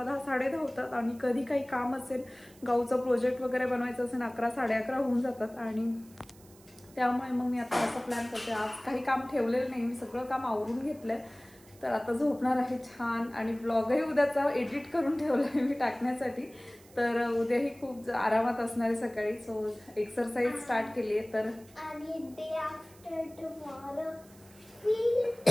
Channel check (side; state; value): right; noise; hiss, 25 dB below the sound